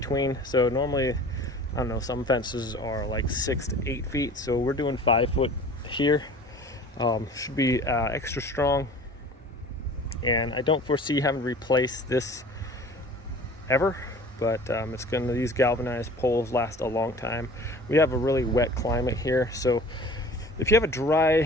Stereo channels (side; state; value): both; normal; correlation 0.44